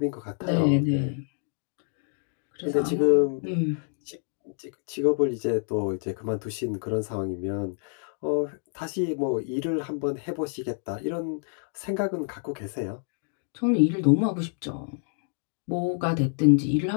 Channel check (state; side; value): silent; right; 55 dB below the other